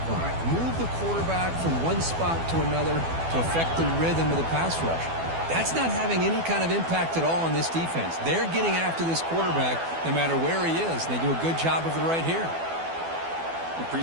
point, move the quarterback from one spot to another to affect the rhythm of the pass rush. That's not having any kind of impact at all on this defense. They're getting after this quarterback no matter where he is, and they do a good job of it right here. The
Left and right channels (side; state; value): left; late; 12 ms